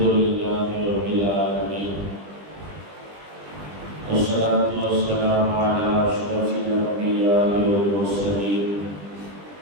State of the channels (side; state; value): left; late; 20 ms